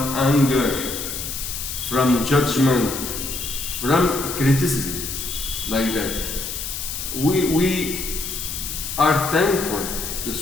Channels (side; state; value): left; noise; hiss, 5 dB below the sound